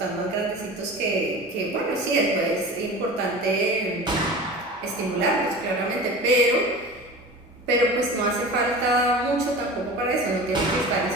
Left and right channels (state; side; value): normal; both; correlation 0.35